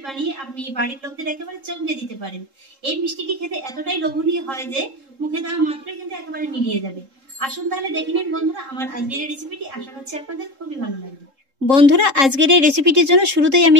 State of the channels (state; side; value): late; left; 3.7 ms